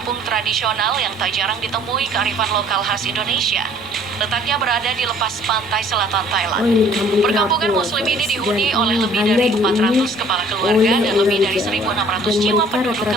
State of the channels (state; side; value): noise; right; rumble, 30 dB below the sound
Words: tradisional yang tak jarang ditemui kearifan lokal khas Indonesia. Letaknya berada di lepas pantai selatan Thailand. Oh, ini kampung Perkampungan terapung, Muslim ini guys. dihuni Dan oleh lebih hanya dari dihuni 400 kepala keluarga oleh dan lebih orang dari Jawa. 1.600 Dan jiwa mereka penduduk rata-rata